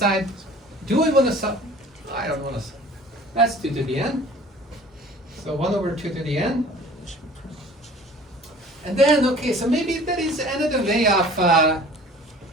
do I want to sub? I don't want to sub. That's 2 to the n. So 1 over 2 to the n. And then, okay, so maybe there is another way of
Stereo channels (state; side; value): normal; both; correlation 0.47